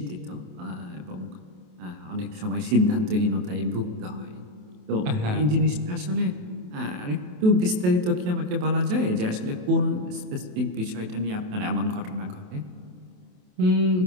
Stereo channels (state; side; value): late; left; 28 ms